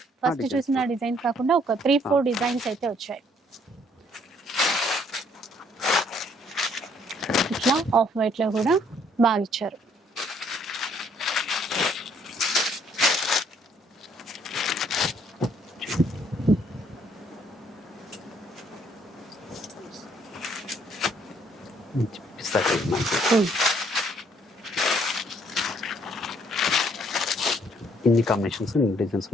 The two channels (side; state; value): both; normal; correlation 0.65